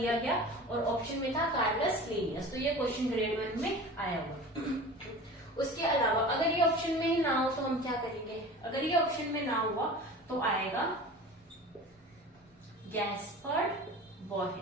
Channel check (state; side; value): normal; both; correlation 0.37